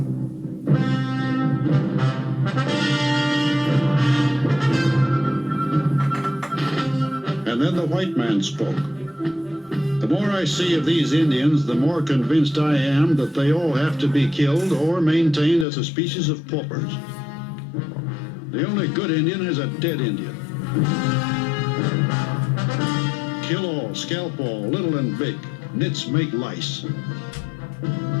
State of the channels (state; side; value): drops out; right; at 15.7 s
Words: And then the white man spoke. The more I see of these Indians, the more convinced I am that they all have to be killed or maintained as a species of paupers. The only good Indian is a dead Indian. Kill all, scalp all, little and big. Nits make lice.